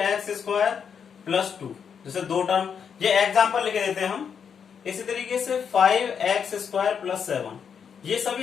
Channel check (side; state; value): right; quieter; 7.1 dB